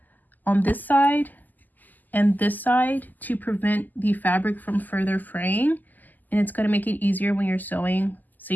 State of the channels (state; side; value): late; right; 0.084 ms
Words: on this side and this side to prevent the fabric from further fraying, and it's going to make it easier when you're sewing, so